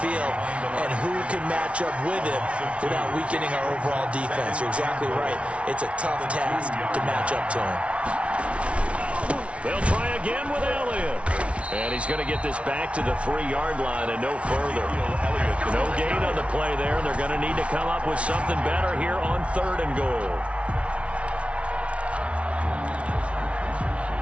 And who can match up with him without weakening our overall defense? You're exactly right. It's a tough task to match up to him. They'll try again with Elliott. And he's going to get this back to the 3-yard line and no further. No gain on the play there. They're going to need to come up with something better here on 3rd and goal.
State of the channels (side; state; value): left; late; 0.062 ms